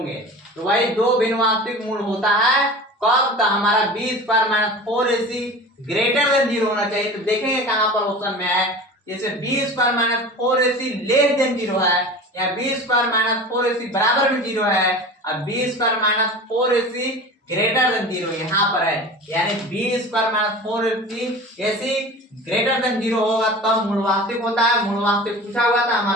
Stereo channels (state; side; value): normal; both; correlation 0.36